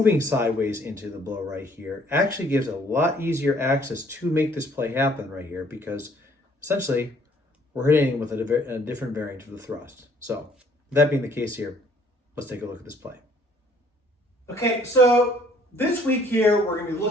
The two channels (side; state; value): both; normal; correlation 0.61